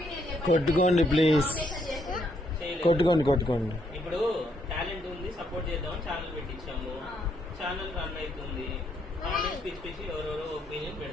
కొట్టుకోండి ప్లీజ్, కొట్టుకోండి. ఇప్పుడు టాలెంట్ ఉంది, సపోర్ట్ చేద్దామని ఛానల్ పెట్టించాము. ఛానల్ రన్ అవుతుంది. కామెంట్స్ పిచ్చి పిచ్చి ఎవరెవరో ఒపీనియన్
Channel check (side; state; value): both; normal; correlation 0.73